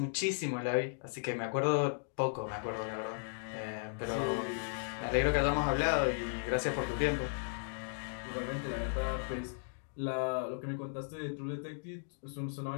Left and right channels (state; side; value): silent; right; digital silence